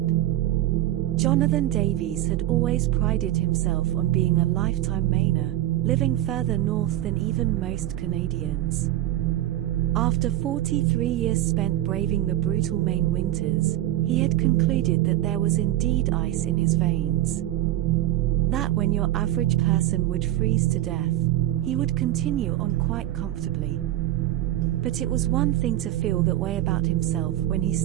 Jonathan Davies had always prided himself on being a lifetime Mainer, living further north than even most Canadians. After 43 years spent braving the brutal Maine winters, he had concluded that there was indeed ice in his veins. That when your average person would freeze to death, he would continue on quite comfortably. But it was one thing to feel that way about himself when he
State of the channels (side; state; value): left; quieter; 14.2 dB